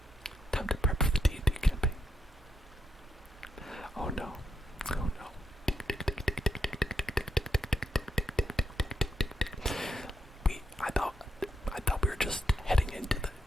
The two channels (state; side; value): normal; both; correlation 0.80